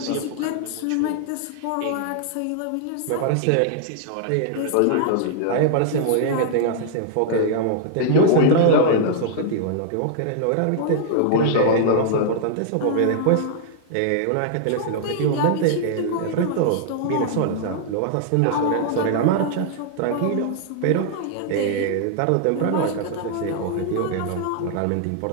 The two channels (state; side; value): different; both; correlation -0.01